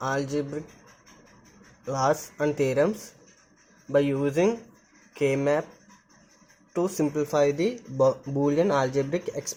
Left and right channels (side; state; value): both; identical; correlation 1.00